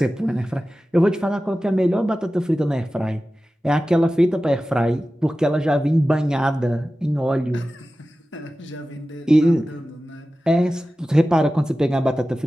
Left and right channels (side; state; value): both; normal; correlation 0.95